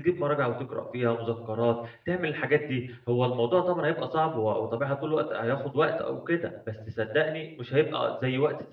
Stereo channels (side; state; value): both; identical; correlation 1.00